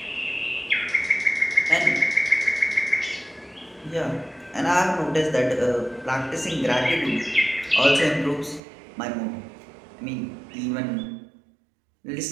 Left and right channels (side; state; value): left; drops out; at 8.6 s